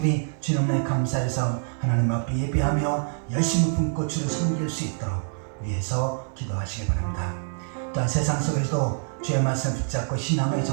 주님의 감사해서 하나님 앞에 예배하며 열심히 품고 주를 섬길 수 있도록 위해서 기도하시기 바랍니다. 또한 세상 속에서도 주의 말씀 붙잡고 신앙의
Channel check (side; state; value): left; silent; 57 dB below the other